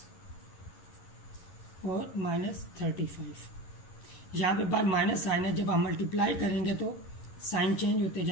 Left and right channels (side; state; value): right; late; 11 ms